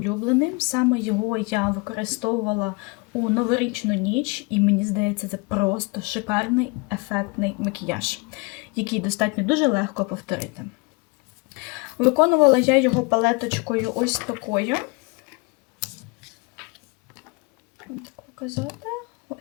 Саме його я використовувала у новорічну ніч. І мені здається, це просто шикарний, ефектний макіяж, який достатньо дуже легко повторити. Виконувала я його палеточкою ось такою. Так показати.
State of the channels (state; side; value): quieter; right; 28.9 dB